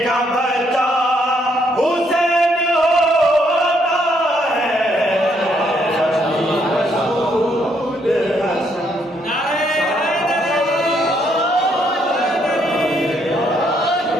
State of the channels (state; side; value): normal; both; correlation 0.72